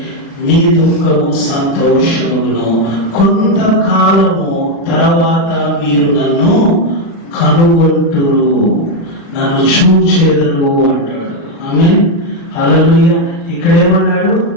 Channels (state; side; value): late; right; 36 ms